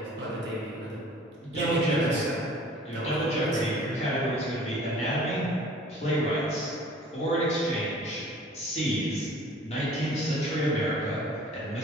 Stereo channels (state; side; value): normal; both; correlation 0.49